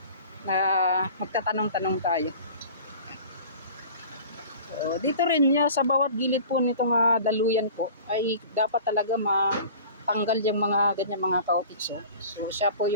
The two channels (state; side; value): inverted; both; correlation -0.43